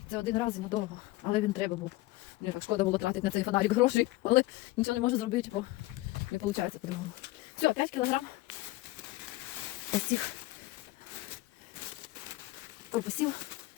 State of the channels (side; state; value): right; quieter; 19.3 dB